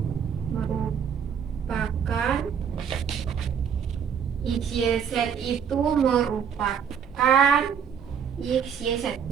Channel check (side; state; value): left; quieter; 7.6 dB